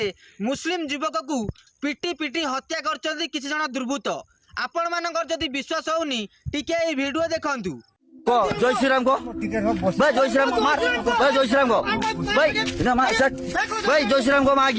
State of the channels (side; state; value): both; identical; correlation 1.00